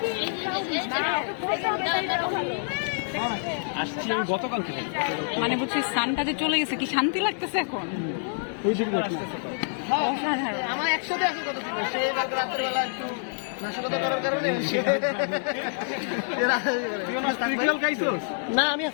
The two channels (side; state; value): right; silent; digital silence